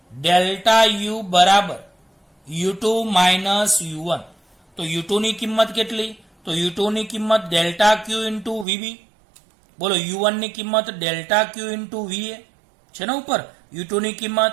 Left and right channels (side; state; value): left; drops out; at 8.7 s